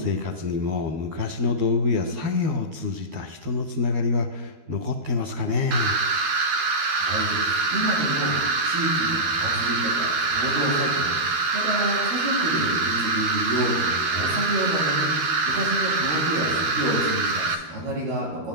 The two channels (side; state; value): left; late; 13 ms